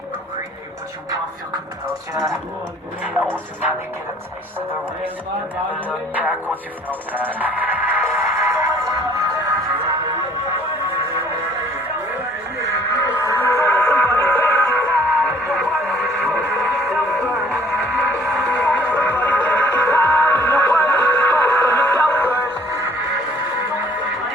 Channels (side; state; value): both; normal; correlation 0.57